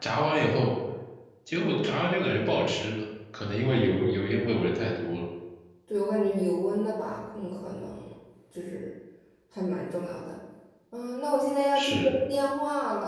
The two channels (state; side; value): identical; both; correlation 1.00